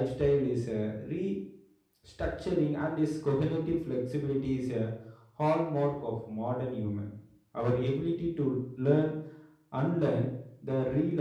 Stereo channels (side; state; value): both; identical; correlation 1.00